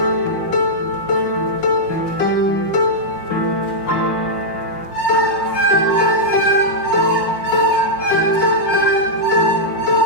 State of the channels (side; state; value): right; late; 5.6 ms